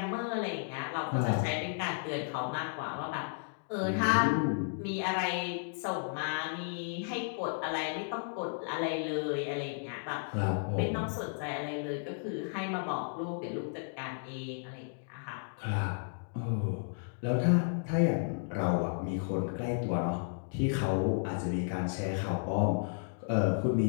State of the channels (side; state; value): right; silent; digital silence